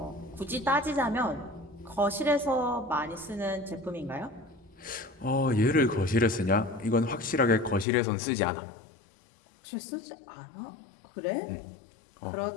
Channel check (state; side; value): drops out; right; at 7.9 s